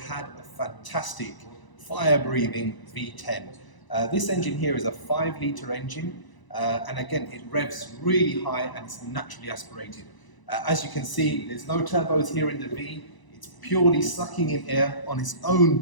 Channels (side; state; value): right; late; 1.0 ms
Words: had a fantastic fire-breathing V10. This engine here is a 5-litre engine, and again, it revs really high and it's naturally aspirated. As you can see, there's no turbos here in the V. It's purely sucking in air on its